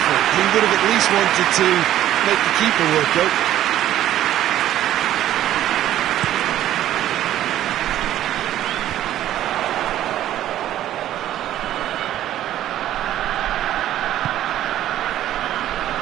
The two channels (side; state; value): left; quieter; 12.6 dB